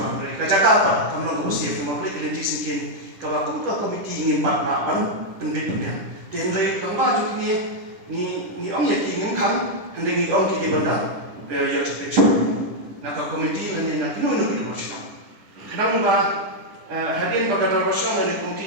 mereka cakap apa kamu nak bersih mau beli kelinci singkin kalau aku ke komiti ngimpat papan pendidikan tenrai lembah juga ni orang yang ingin kan hendak ni orang kita benda ya cepat nak komiti lani nak nunu kita bersih kenapa hadin bagadar bersama dengan komiti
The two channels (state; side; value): late; left; 10 ms